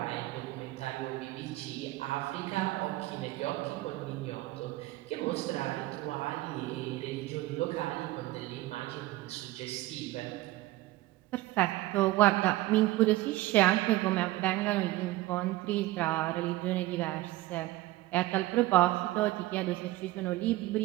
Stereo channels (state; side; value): quieter; left; 17.6 dB